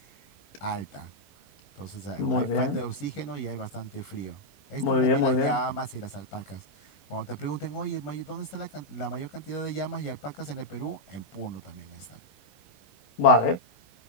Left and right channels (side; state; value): right; late; 11 ms